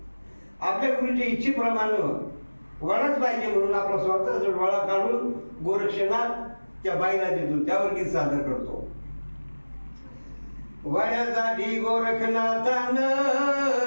इच्छेप्रमाणे वडाच पाहिजे म्हणून आपला स्वतःचा डोळा काढून गोरक्षनाथ त्या बाईला देतो. त्यावर गीत सादर करतो. वड्यासाठी गोरखनाथानं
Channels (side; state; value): both; inverted; correlation -1.00